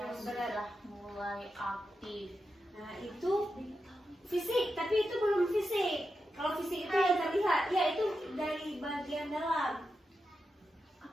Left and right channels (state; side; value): normal; both; correlation 0.88